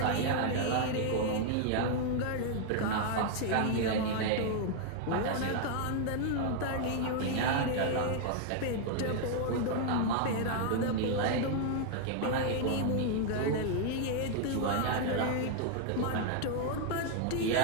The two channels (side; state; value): both; different; correlation 0.00